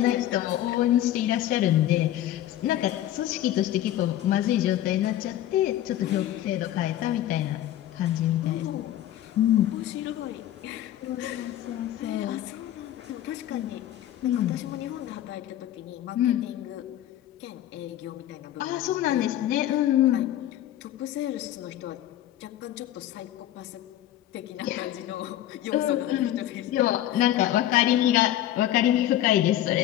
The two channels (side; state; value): right; quieter; 12.8 dB